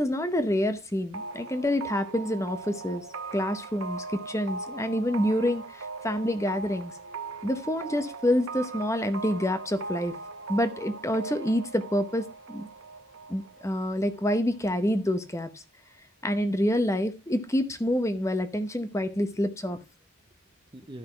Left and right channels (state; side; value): normal; both; correlation 0.77